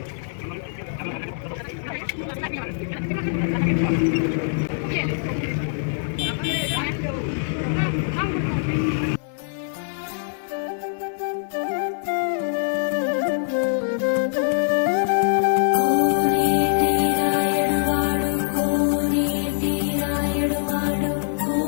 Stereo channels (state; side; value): silent; right; digital silence